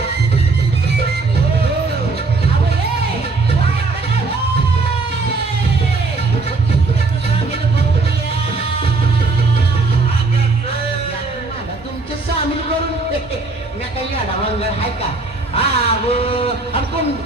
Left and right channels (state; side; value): quieter; left; 3.7 dB